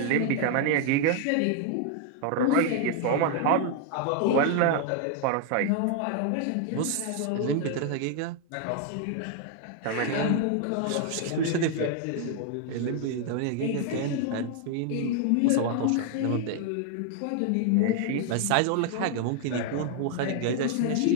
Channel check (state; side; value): different; both; correlation 0.00